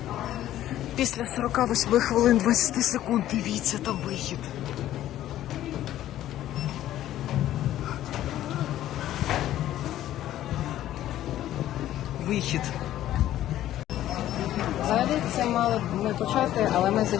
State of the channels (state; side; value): quieter; right; 13.1 dB